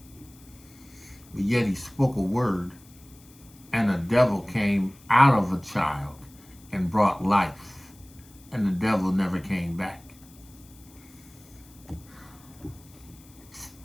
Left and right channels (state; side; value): noise; left; hiss, 25 dB below the sound